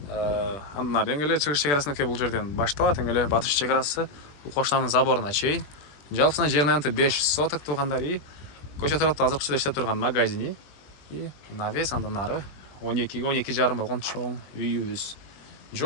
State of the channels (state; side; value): late; right; 20 ms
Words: Андан ары эле чыгыш чек бул жерден башталат. Эле батыш чек Кошнанын заборуна чейин. Жалпысына жерин анты 5 соток туугандар и көчө тарапта азыркыча иштеп турган магазини и навес андан ары 12-12,5 болгон чоң үйүбүз.